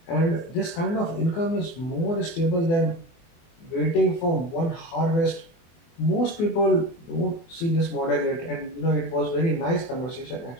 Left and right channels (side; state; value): right; late; 24 ms